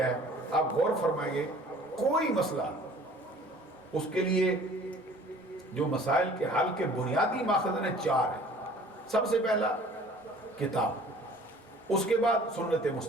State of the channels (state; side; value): normal; both; correlation 0.50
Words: ہے؟ آپ غور فرمائیں گے، کوئی مسئلہ اس کے لیے جو مسائل کے حل کے بنیادی ماخذ ہیں 4 ہیں. سب سے پہلا کتاب، اس کے بعد سنت